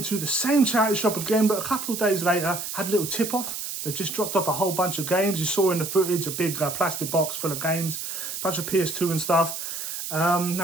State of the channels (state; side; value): noise; right; hiss, 6 dB below the sound